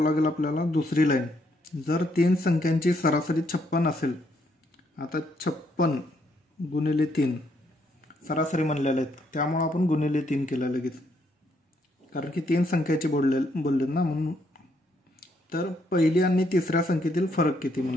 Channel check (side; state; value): both; normal; correlation 0.73